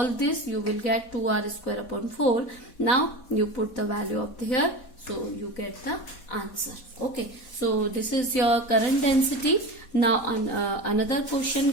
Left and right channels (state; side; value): late; right; 4.1 ms